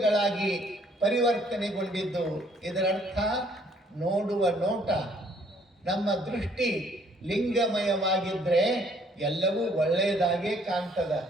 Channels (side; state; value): both; normal; correlation 0.63